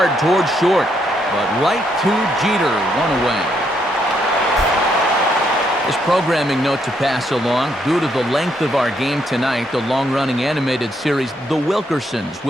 towards short. But right to Jeter, 1 away. This programming note to pass along. Due to the length of our game tonight, the long-running animated series The Wilkersons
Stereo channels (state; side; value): normal; both; correlation 0.75